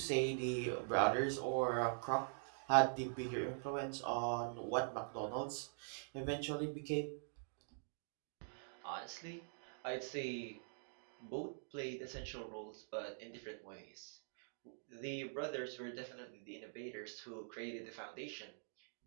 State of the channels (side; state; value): left; silent; digital silence